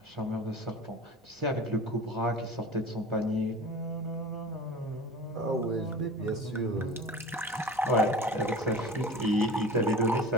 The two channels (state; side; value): normal; both; correlation 0.38